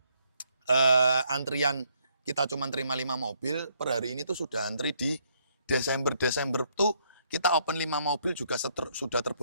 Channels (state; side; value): inverted; both; correlation -0.71